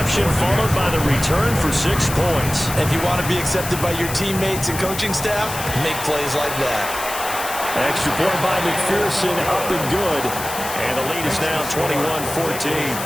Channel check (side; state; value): left; noise; hiss, 8 dB below the sound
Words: followed by the return for 6 points. If you want to be accepted by your teammates and coaching staff, make plays like that. Extra point by McPherson, up and good. And the lead is now 21-14.